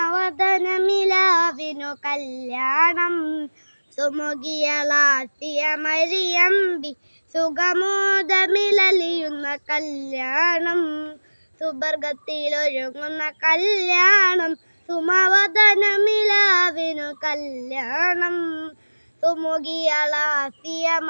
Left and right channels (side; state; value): both; inverted; correlation -1.00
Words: കല്യാണം സുമുഖിയളാസിയ മരിയമ്പി സുഖമോദമിലലിയുന്ന കല്യാണം സുവർഗത്തിലൊരുങ്ങുന്ന കല്യാണം സുമവദനമിലാവിനു കല്യാണം സുമുഖിയളാസിയ